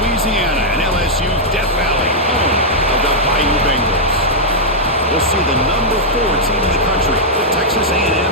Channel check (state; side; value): normal; both; correlation -0.05